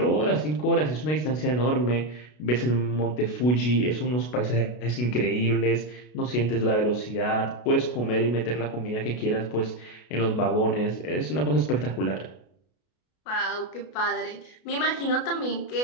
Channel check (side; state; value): right; late; 33 ms